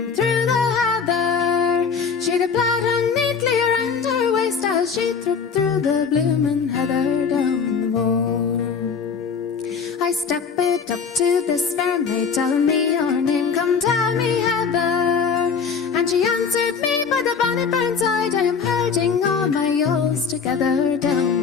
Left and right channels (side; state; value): right; quieter; 5.9 dB